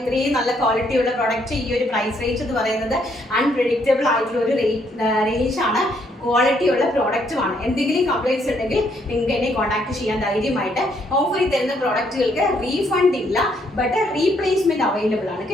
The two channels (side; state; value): both; normal; correlation 0.71